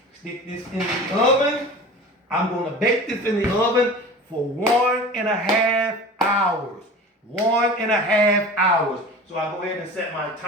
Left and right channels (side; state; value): both; normal; correlation 0.37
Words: stick this in the oven. I'm going to bake this in the oven for 1.5 hours. 1.5 hours. So I'll go ahead and set my